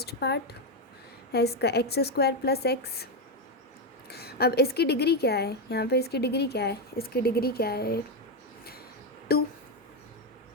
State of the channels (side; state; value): both; normal; correlation 0.07